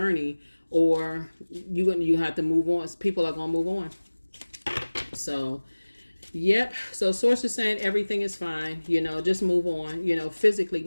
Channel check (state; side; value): inverted; both; correlation -1.00